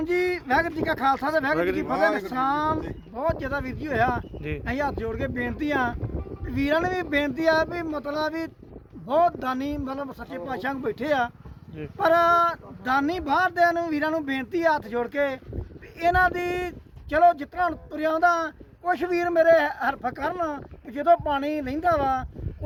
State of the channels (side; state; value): both; identical; correlation 1.00